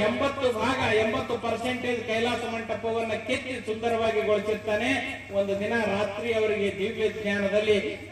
80% ಕೈಲಾಸ ಮಂಟಪವನ್ನ ಕೆತ್ತಿ ಸುಂದರವಾಗಿ ಗೊಳಿಸಿರ್ತಾನೆ. ಒಂದು ದಿನ ರಾತ್ರಿ ಅವರಿಗೆ ದಿವ್ಯ ಜ್ಞಾನದಲ್ಲಿ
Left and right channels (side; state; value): both; identical; correlation 1.00